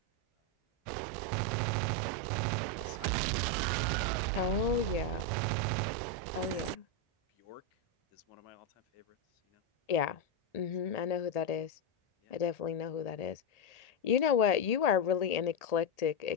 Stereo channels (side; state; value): right; late; 1.8 ms